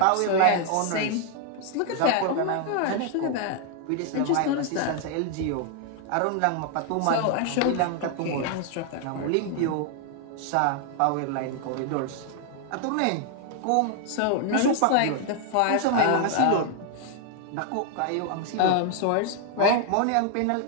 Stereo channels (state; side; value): different; both; correlation 0.00